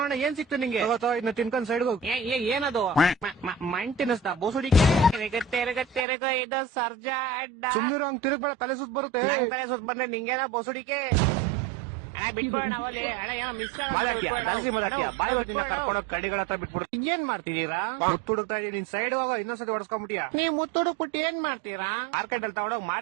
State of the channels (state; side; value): drops out; left; at 6.1 s